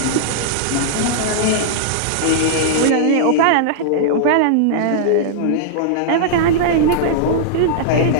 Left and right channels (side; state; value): both; different; correlation -0.02